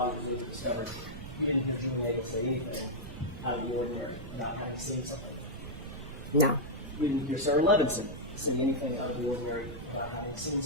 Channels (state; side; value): noise; right; rumble, 11 dB below the sound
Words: was later discovered, you didn't hear Julie Nagel say anything out of the ordinary about having seen something. No. You didn't hear Sarah Levinson say anything out of the ordinary about having seen